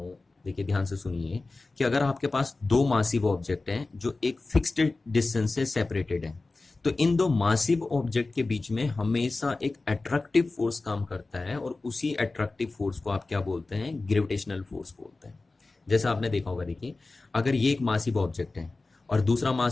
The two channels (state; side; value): quieter; right; 3.4 dB